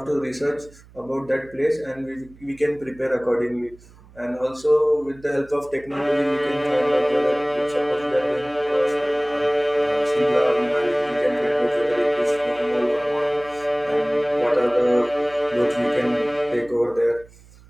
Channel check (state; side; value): noise; right; hum, 24 dB below the sound